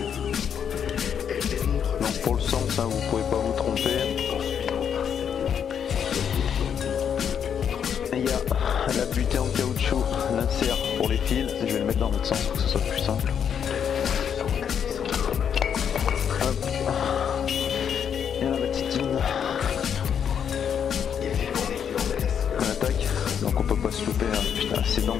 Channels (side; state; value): right; quieter; 8.0 dB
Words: Donc pour le sens, vous pouvez pas vous tromper. Et il y a la butée en caoutchouc, l'insert pour les fils. Je vais le mettre dans l'autre sens pour que ce soit plus simple. Hop. Et la batitine. On attaque. Donc on peut pas se louper. Hein. Putain, c'est